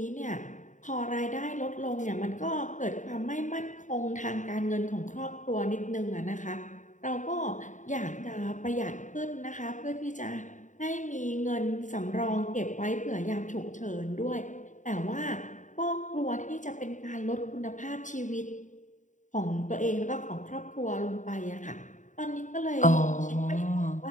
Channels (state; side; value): late; right; 0.36 ms